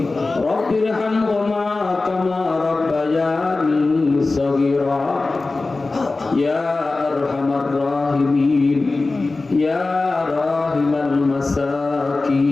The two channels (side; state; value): right; quieter; 3.5 dB